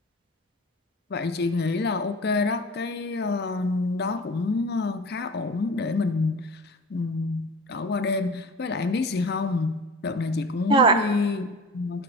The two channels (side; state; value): both; normal; correlation 0.37